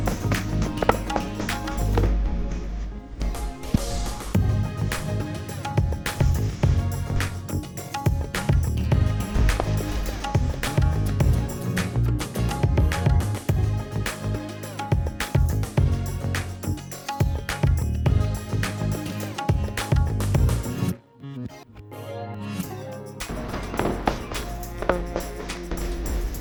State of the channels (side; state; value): both; identical; correlation 1.00